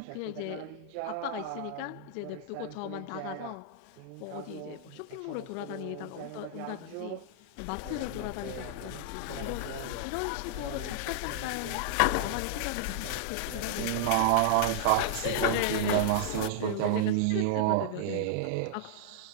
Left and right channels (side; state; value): both; different; correlation -0.01